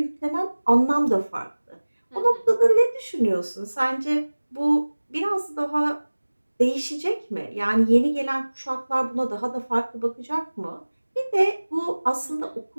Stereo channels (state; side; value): inverted; both; correlation -1.00